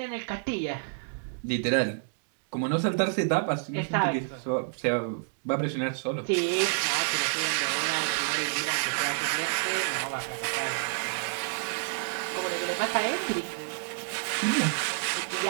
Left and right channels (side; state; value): left; silent; digital silence